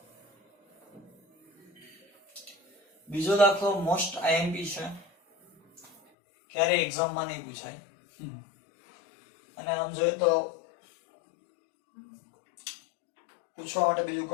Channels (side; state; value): right; drops out; at 6.0 s